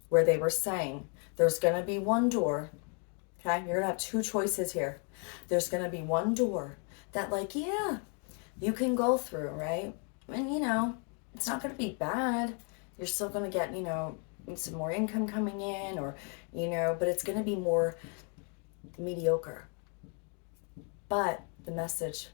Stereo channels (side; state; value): right; quieter; 39.0 dB